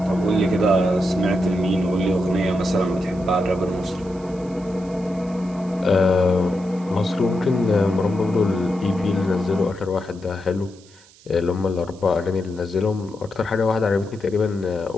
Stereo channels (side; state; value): right; noise; hiss, 26 dB below the sound